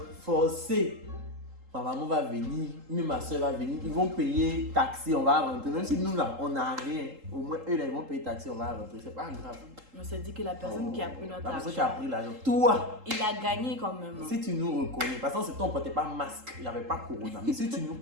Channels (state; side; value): late; left; 3.8 ms